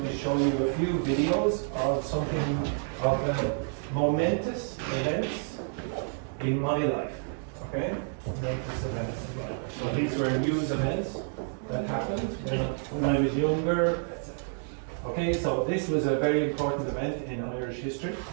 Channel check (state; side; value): silent; left; 58 dB below the other